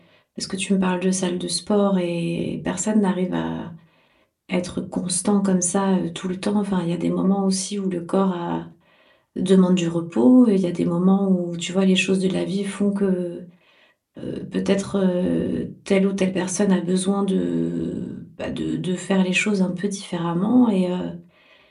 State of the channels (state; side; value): identical; both; correlation 1.00